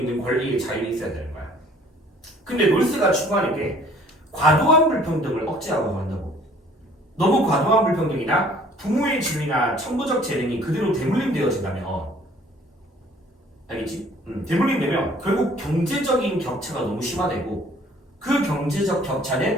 권리의 자유가 있어야 되는 거야. 근데 놀스가 추구하는 게 과도한 불평등을 억제하고 한다고. 너무 과도한 불평등이나 부모의 지위나 천부적 재능이 그대로 대물림되어진다면 알겠지? 대물림되면 결국 경제적인 격차가 너무 심화되고 그 경제적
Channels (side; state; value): both; normal; correlation 0.55